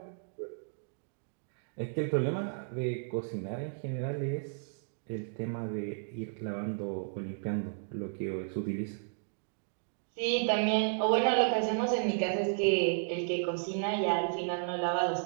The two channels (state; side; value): silent; left; digital silence